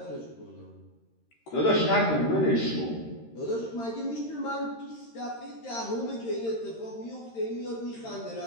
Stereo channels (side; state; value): right; late; 13 ms